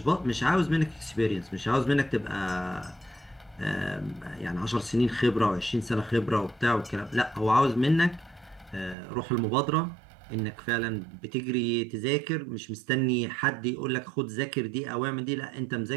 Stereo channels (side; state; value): left; drops out; at 9.0 s